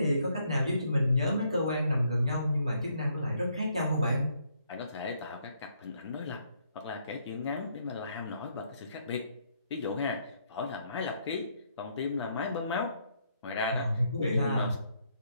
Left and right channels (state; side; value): inverted; both; correlation -0.72